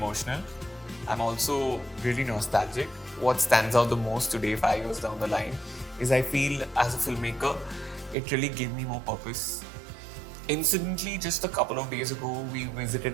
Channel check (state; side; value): drops out; left; at 8.2 s